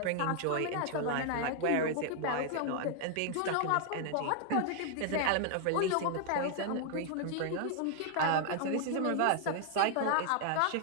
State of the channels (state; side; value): different; both; correlation 0.00